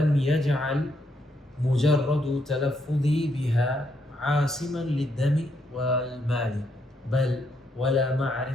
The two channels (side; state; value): both; normal; correlation 0.76